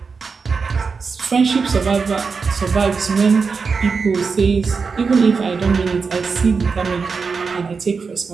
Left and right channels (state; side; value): quieter; left; 5.1 dB